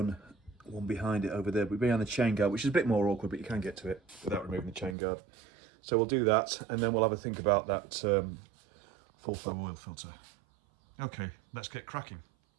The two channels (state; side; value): drops out; left; at 5.0 s